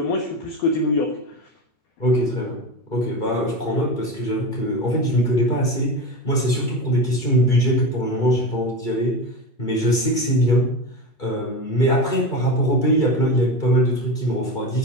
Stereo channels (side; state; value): right; late; 2.3 ms